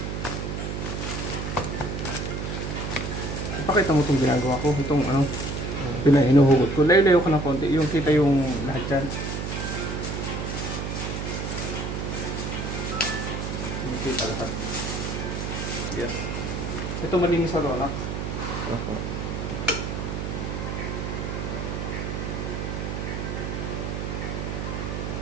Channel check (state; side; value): noise; right; hum, 3 dB below the sound